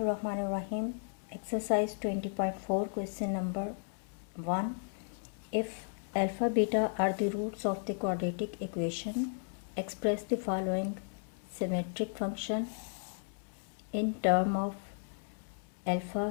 Exercise 20.4, question number 1. If alpha beta are the roots of the quadratic equation, express the following symmetric function in term of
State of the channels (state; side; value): silent; right; 55 dB below the other